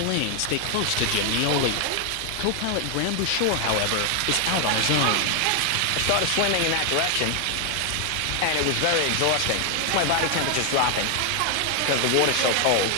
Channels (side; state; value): both; different; correlation 0.00